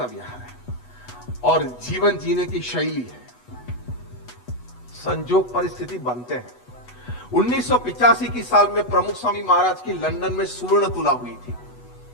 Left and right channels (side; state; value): right; late; 8.1 ms